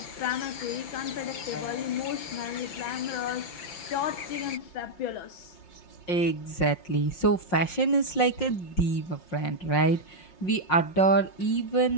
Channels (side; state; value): right; late; 5.6 ms